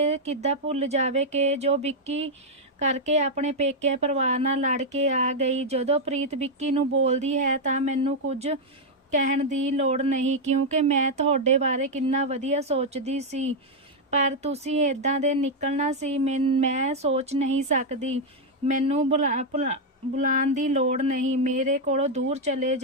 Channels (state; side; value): normal; both; correlation 0.00